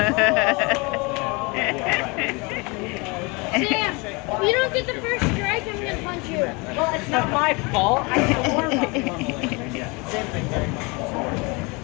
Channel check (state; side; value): quieter; right; 28.0 dB